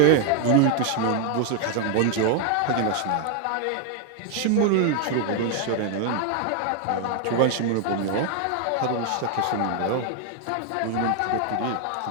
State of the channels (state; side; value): different; both; correlation 0.00